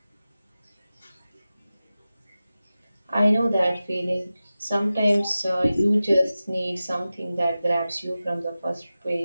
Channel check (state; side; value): inverted; both; correlation -0.95